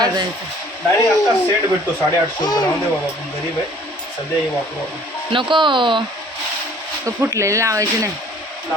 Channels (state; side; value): normal; both; correlation 0.54